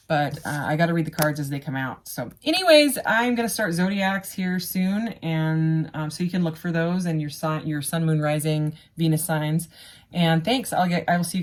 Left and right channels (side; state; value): both; identical; correlation 1.00